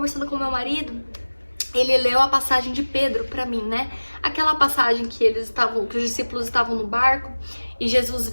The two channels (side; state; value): both; inverted; correlation -1.00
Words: com meu marido, ele leu a passagem de Pedro pra mim, né? Aquela passagem que os discípulos estavam no barco e Jesus